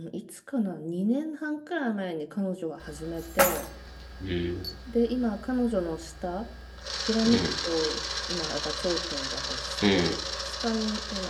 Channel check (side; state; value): both; identical; correlation 1.00